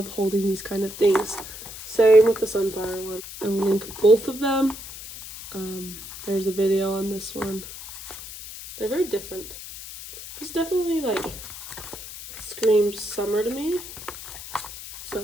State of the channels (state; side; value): noise; left; hiss, 12 dB below the sound